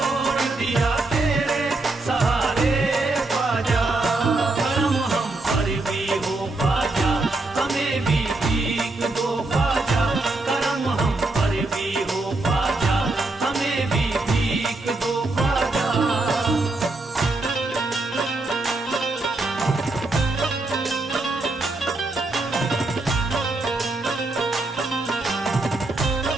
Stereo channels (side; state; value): left; quieter; 3.1 dB